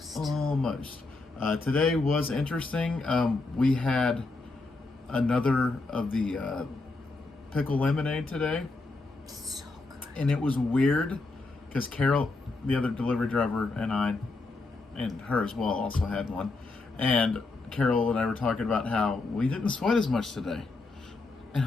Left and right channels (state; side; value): quieter; right; 3.4 dB